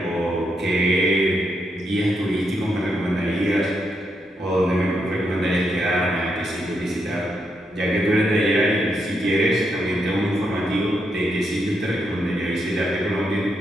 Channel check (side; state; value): both; normal; correlation 0.81